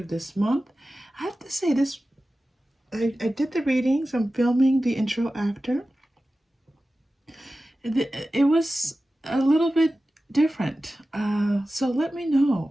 this month. I have to say this, I did the readings, I'm filming the intro after. It was a little bit different. So let me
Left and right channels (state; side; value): normal; both; correlation 0.95